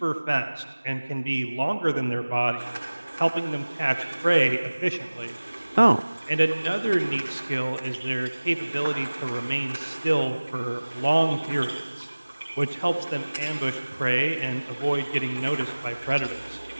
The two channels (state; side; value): inverted; both; correlation -1.00